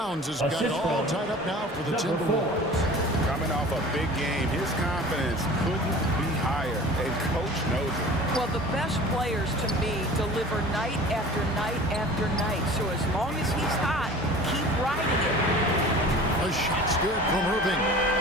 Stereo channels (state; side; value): normal; both; correlation 0.42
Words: has got it all tied up now for the Timberwolves. Coming off a big game, his confidence couldn't be higher, and Coach knows it. Well, the best players, to me, deliver night after night after night. So as long as he's hot, keep riding it. A shot's good from Irving.